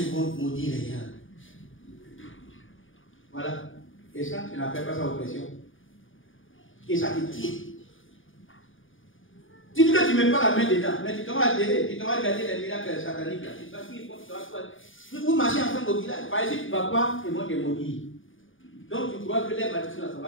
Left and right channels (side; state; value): right; late; 0.57 ms